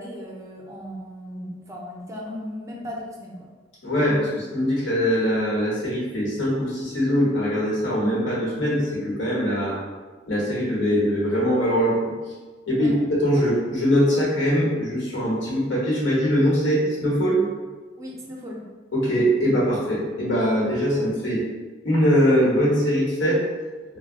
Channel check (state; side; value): normal; both; correlation 0.59